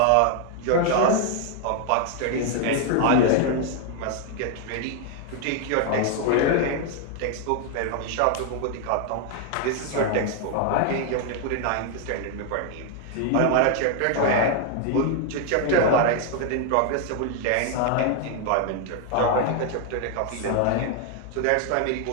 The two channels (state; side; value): different; both; correlation 0.00